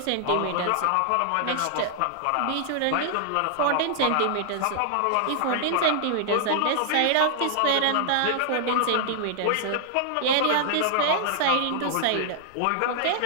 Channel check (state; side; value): different; both; correlation -0.01